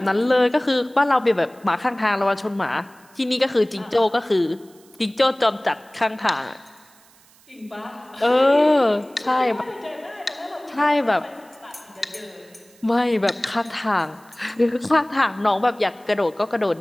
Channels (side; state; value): right; noise; hiss, 28 dB below the sound